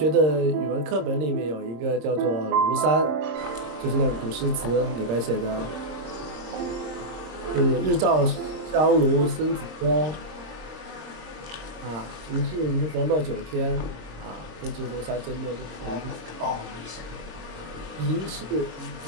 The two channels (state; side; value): late; left; 26 ms